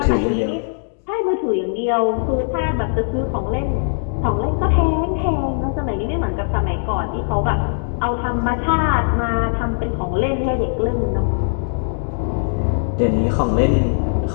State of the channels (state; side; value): silent; right; digital silence